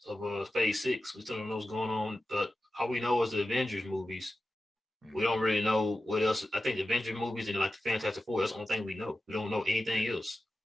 of Phase 6. We still don't know what's going on. But all we know is the Avengers movies. Mm-hmm. We don't really know what else. I think the Avengers movies and like the Fantastic Four. That's the only thing we know. We don't know anything else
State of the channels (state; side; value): normal; both; correlation 0.93